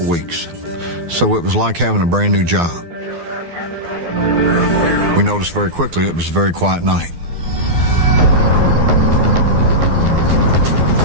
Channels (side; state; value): left; late; 12 ms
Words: weeks, so it was like having a brand new job. We noticed very quickly it was a very quiet night.